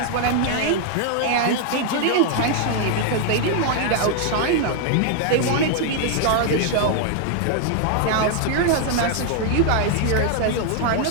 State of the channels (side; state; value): both; different; correlation 0.00